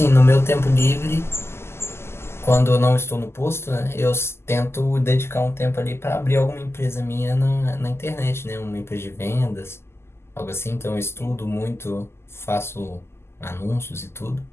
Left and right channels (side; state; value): right; late; 0.12 ms